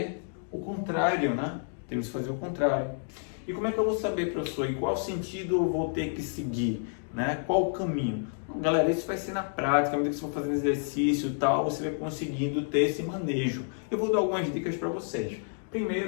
o contrário, né? Temos que fazer o contrário. E como é que eu vou saber, professor, em qual sentido eu vou ter que seguir, né? Qual o caminho? Galera, isso vai ser na prática, à medida que você for fazendo exercício e tal, você vai conseguindo ter esse manejo. Eu vou dar algumas dicas para vocês.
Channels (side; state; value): right; silent; digital silence